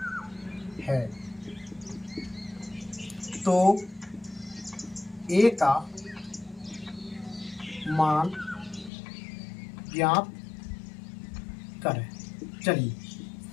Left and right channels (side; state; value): right; drops out; at 8.9 s